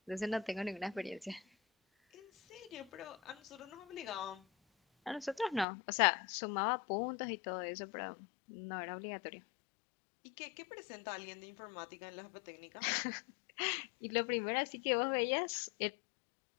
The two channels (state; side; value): drops out; right; at 5.7 s